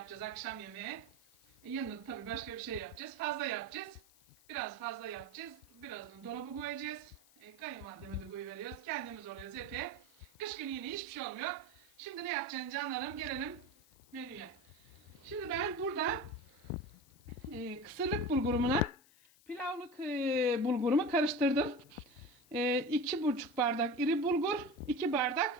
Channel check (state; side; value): noise; left; hiss, 27 dB below the sound